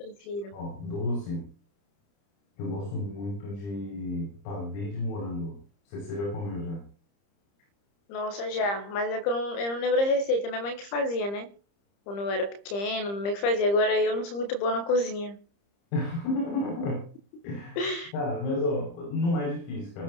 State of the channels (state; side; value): late; right; 30 ms